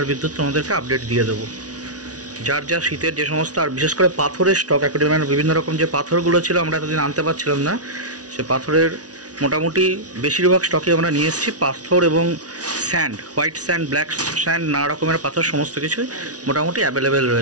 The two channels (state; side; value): late; left; 0.68 ms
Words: আর বিদ্যুৎ তোমাদেরকে আপডেট দিয়ে দেবো। যার যা শীতের যে সমস্ত, আর বিশেষ করে পাথরের স্টক, অ্যাকোয়ারিয়ামের বিভিন্ন রকম যে পাথরগুলো ছিল আমরা এতদিন আনতে পারছিলাম না, সে পাথরের মোটামুটি বেশিরভাগ স্টকে আমরা নিয়ে এসেছি। পাথর এবং sand, white sand, black sand, নানা রকমের পাথর সমস্ত কিছুই মোটামুটি অ্যাভেলেবেল